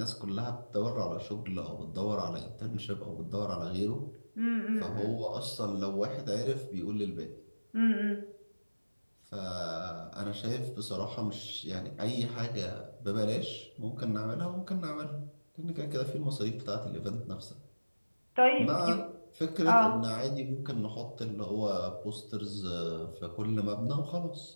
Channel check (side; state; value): both; inverted; correlation -1.00